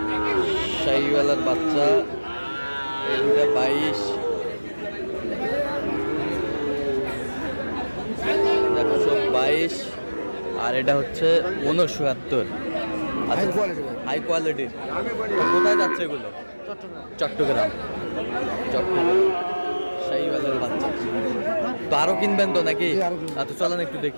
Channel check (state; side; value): inverted; both; correlation -1.00